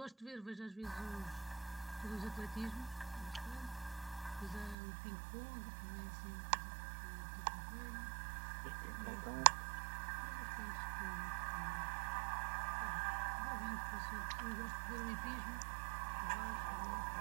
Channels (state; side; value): drops out; left; at 4.8 s